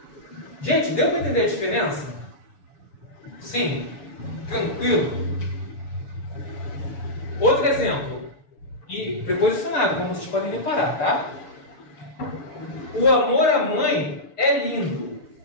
Gente, deu para entender a diferença? Sim? Tranquilo? Outro exemplo. E preposicionado, como vocês podem reparar, tá? O amor à mãe é lindo.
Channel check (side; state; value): right; late; 6.9 ms